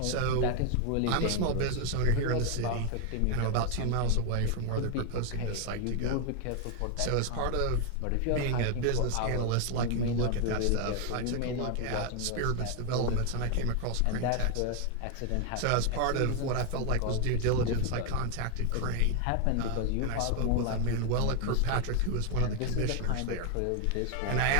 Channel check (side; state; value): both; different; correlation 0.00